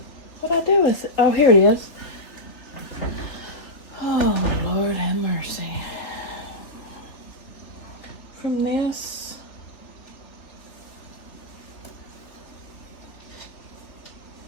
What'd I do with it? Oh, here it is. Oh, Lord have mercy. From this.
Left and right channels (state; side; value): late; right; 3.4 ms